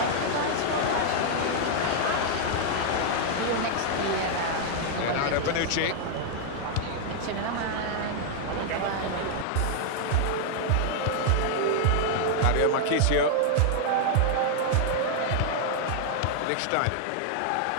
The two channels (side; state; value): both; different; correlation -0.01